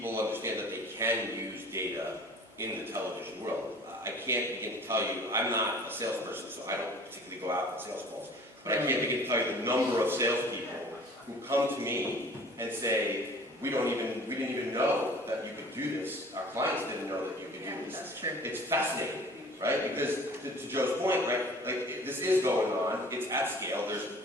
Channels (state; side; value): normal; both; correlation 0.47